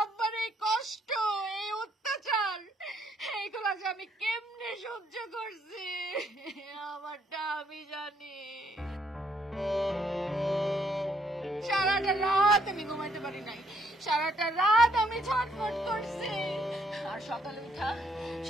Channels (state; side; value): normal; both; correlation 0.70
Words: আব্বার এই কষ্ট, এই অত্যাচার, এইগুলা যে আমি কেমনে সহ্য করছি আমারটা আমি জানি। সারাটা রাত আমি ঘুমাইতে পারি নাই, সারাটা রাত আমি ছটফট করছি। আর